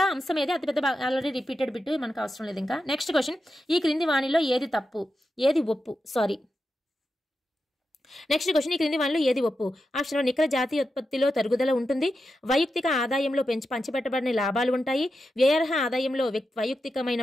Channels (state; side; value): normal; both; correlation 0.89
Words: అంశం ఏది, అతిపెద్ద ఆల్రెడీ రిపీటెడ్ బిట్, మనకు అవసరం లేదు ఇంకా. నెక్స్ట్ క్వశ్చన్, ఈ క్రింది వాణిలో ఏది తప్పు ఏది ఒప్పు? నెక్స్ట్ క్వశ్చన్, ఈ క్రింది వానిలో ఏది ఒప్పు? ఆప్షన్ నికర జాతీయ ఉత్పత్తిలో తరుగుదల ఉంటుంది, వైయక్తిక ఆదాయంలో పంచిపెట్టబడిన లాభాలు ఉంటాయి, వ్యయార్హ ఆదాయంలో వైయక్తికమైన